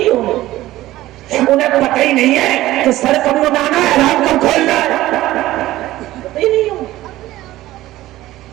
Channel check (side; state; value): left; quieter; 15.9 dB